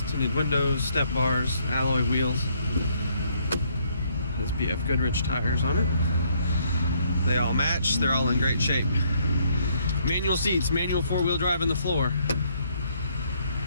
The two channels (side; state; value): both; inverted; correlation -0.68